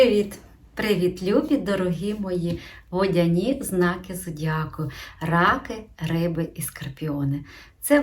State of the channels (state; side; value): identical; both; correlation 1.00